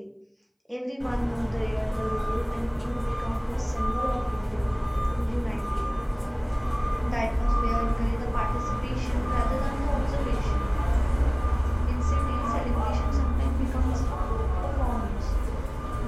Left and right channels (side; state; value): both; identical; correlation 1.00